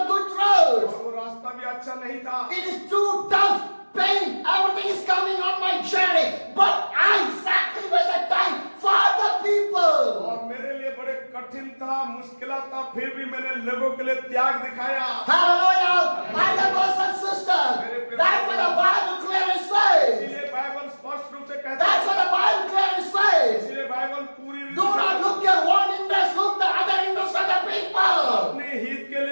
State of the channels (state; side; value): inverted; both; correlation -1.00